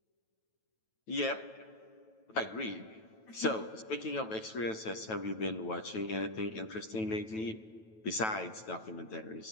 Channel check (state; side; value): late; right; 9.2 ms